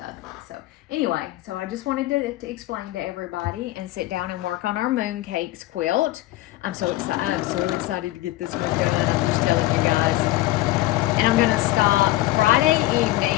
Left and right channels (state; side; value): quieter; right; 17.1 dB